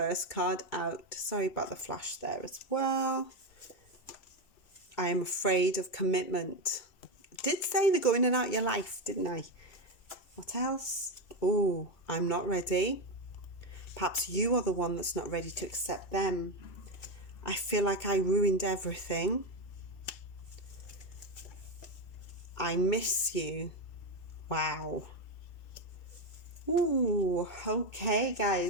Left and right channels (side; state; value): right; late; 2.2 ms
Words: card out. Sorry about the flash there as well. I am afraid of commitment. I did say they're going in and out your life, didn't I? What else? Oh, I'm not ready. Perhaps you are the one that's not ready to accept them. I feel like I ruined everything. I miss you. Wow. Ooh, okay,